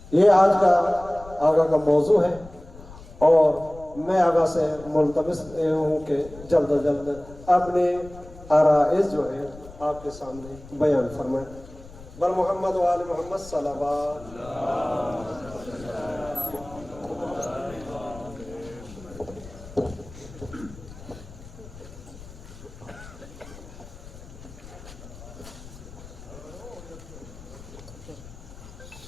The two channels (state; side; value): noise; left; rumble, 17 dB below the sound